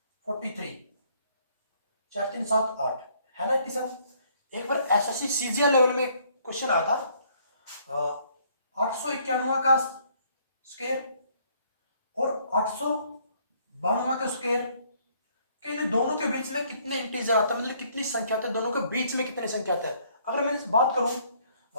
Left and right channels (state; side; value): inverted; both; correlation -0.64